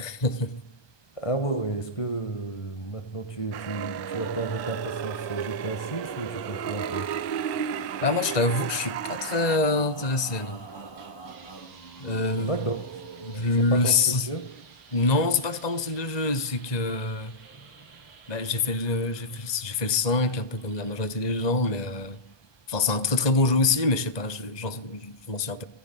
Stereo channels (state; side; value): late; right; 1.2 ms